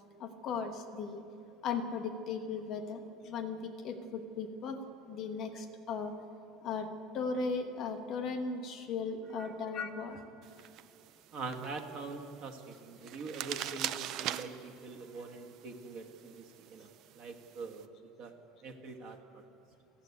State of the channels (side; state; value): both; normal; correlation 0.38